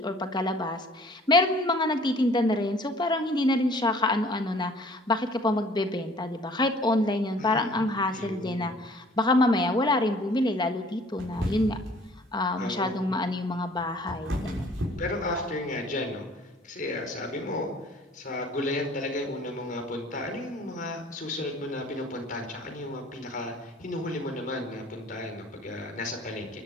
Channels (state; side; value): normal; both; correlation 0.53